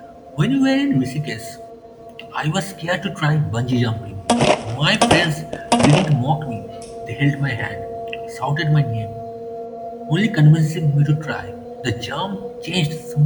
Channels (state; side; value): identical; both; correlation 1.00